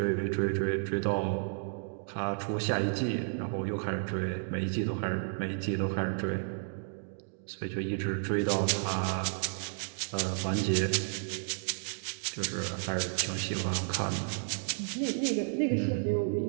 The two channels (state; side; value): silent; left; digital silence